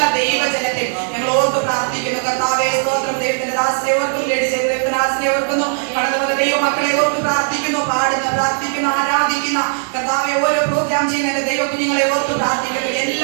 ദൈവജനത്തെയും ഞങ്ങൾ ഓർത്ത് പ്രാർത്ഥിക്കുന്നു. കർത്താവേ സ്തോത്രം ദൈവത്തിന്റെ ദാസനെ ഓർക്കുന്നു, ലേഡി ചെയ്ത ദൈവത്തിന്റെ ദാസനെ ഓർക്കുന്നു, കടന്നു വന്ന ദൈവമക്കളെ ഓർത്ത് പ്രാർത്ഥിക്കുന്നു, പാടുന്ന പ്രാർത്ഥിക്കുന്ന ആരാധിക്കുന്ന കർത്താവെ ഓരോ പ്രോഗ്രാം ചെയ്യുന്ന ദൈവ കുഞ്ഞുങ്ങളെ ഓർത്ത് പ്രാർത്ഥിക്കുന്നു.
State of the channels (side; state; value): left; silent; 67 dB below the other